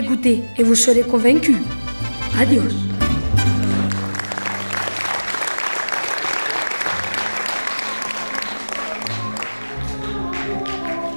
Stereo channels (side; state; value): both; inverted; correlation -1.00